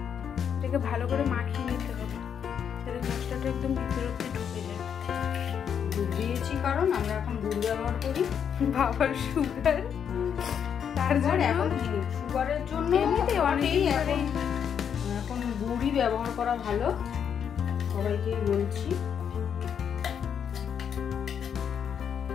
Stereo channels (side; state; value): right; quieter; 7.9 dB